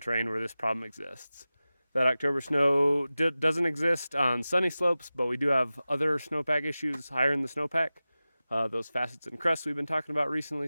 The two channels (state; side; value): inverted; both; correlation -0.96